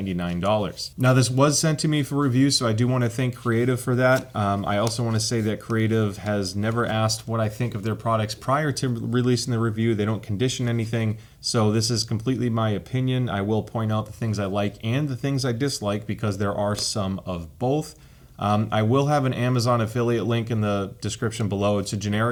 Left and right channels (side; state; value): both; identical; correlation 1.00